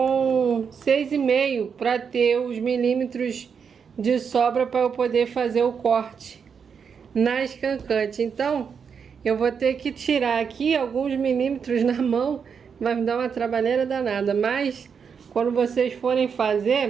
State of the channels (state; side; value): quieter; left; 6.5 dB